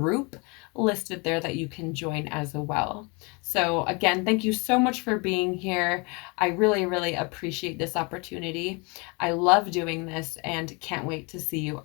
listed there that you can join as well. So again, thank you so much for being here. I really, really appreciate this opportunity. I love doing this and can't wait to see you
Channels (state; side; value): quieter; right; 30.2 dB